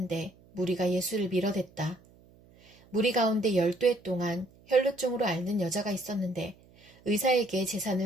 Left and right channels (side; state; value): right; noise; hum, 27 dB below the sound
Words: 무리가 예수를 밀어댔다. 무리 가운데 12해 동안 혈루증으로 앓는 여자가 있었는데 의사에게